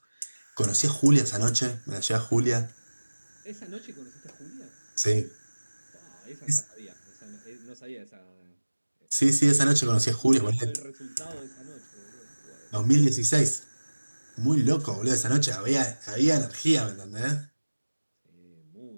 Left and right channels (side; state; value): both; inverted; correlation -1.00